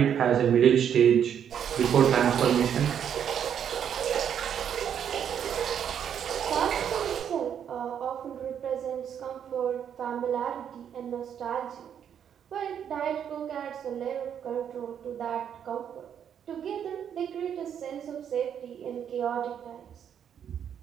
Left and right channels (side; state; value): left; quieter; 8.7 dB